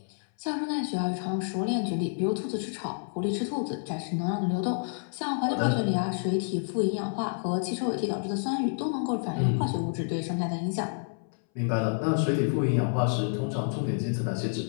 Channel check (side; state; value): right; silent; 59 dB below the other